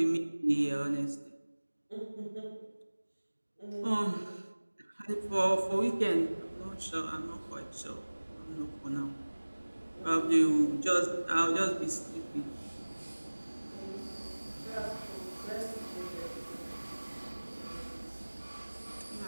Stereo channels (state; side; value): inverted; both; correlation -1.00